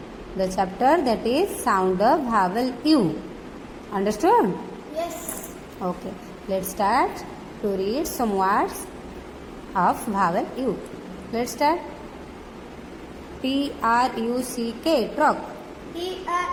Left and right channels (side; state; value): both; identical; correlation 1.00